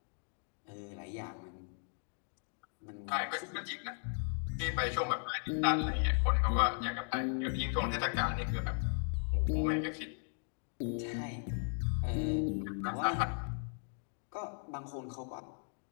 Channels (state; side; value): silent; right; 53 dB below the other